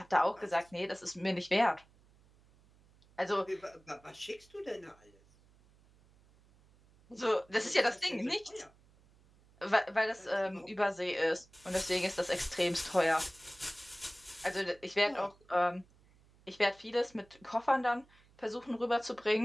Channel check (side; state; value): right; noise; hum, 29 dB below the sound